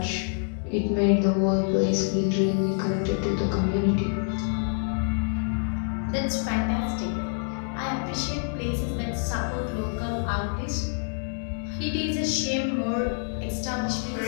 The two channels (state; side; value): silent; right; 60 dB below the other